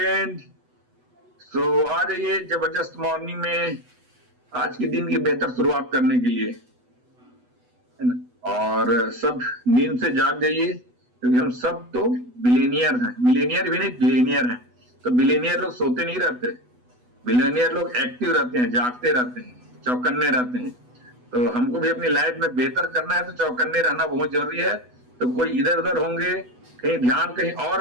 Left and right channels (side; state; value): left; late; 8.1 ms